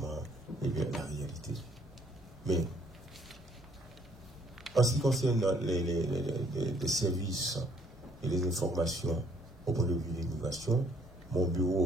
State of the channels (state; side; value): normal; both; correlation 0.64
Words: la réalité. Mais, en ce qui concerne les services et les informations au point de vue de l'immigration, mon